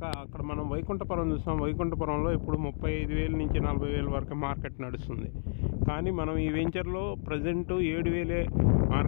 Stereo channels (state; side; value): silent; right; digital silence